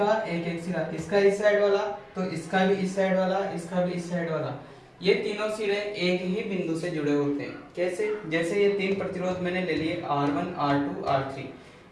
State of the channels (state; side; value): identical; both; correlation 1.00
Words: एक एक सिरा, इसका इस साइड वाला तो इसका भी इस साइड वाला, इसका भी इस साइड वाला, ये तीनों सिरे एक ही बिंदु से जुड़े होते हैं। कैसे? जैसे ये तीन प्रतिरोध मैंने ले लिए R1, R2, R3,